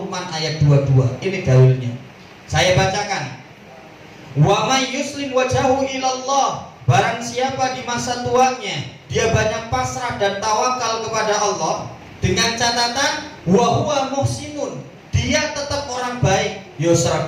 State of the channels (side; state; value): both; identical; correlation 1.00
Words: ayat 22. Ini dalilnya. Saya bacakan. Wa may yuslim wajahu ilallah. Barang siapa di masa tuanya dia banyak pasrah dan tawakal kepada Allah, dengan catatan wa huwa muhsinun, dia tetap orang baik. Yo